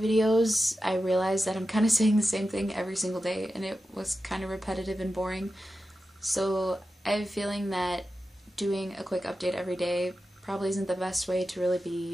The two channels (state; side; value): normal; both; correlation 0.92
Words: I realized that I'm kind of saying the same thing every single day, and it was kind of repetitive and boring. So I have a feeling that doing a quick update every day probably isn't the best way to really